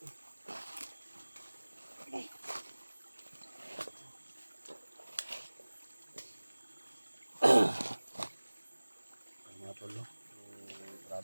Mga tol, no?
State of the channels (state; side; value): inverted; both; correlation -1.00